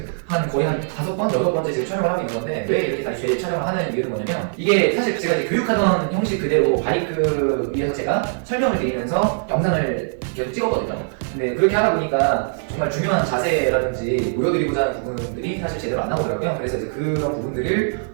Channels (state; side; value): silent; left; digital silence